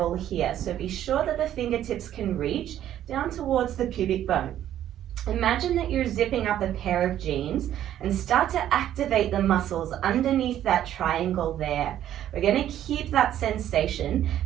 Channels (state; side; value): quieter; left; 11.5 dB